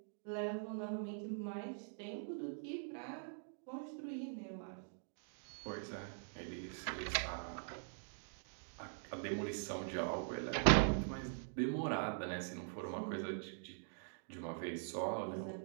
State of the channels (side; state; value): left; silent; digital silence